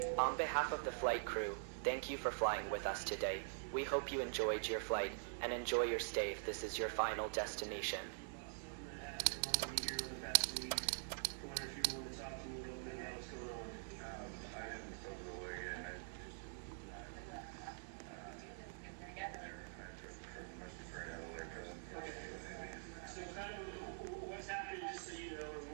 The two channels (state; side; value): silent; left; digital silence